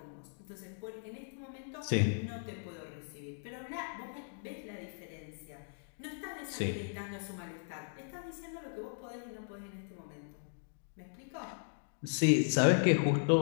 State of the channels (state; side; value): silent; right; digital silence